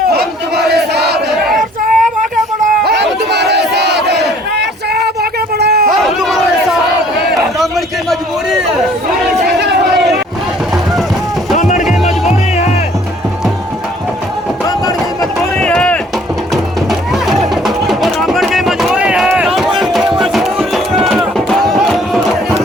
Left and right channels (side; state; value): both; normal; correlation 0.58